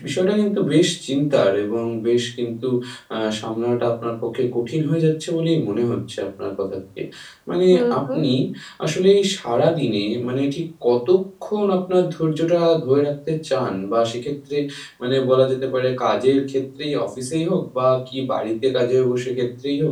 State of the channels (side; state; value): both; identical; correlation 1.00